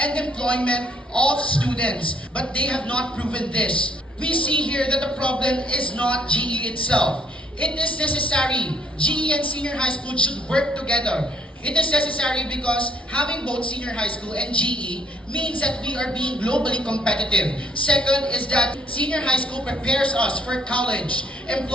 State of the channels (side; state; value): both; normal; correlation 0.68